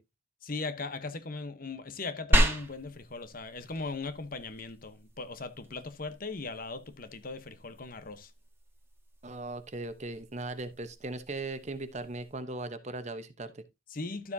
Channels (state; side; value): normal; both; correlation 0.58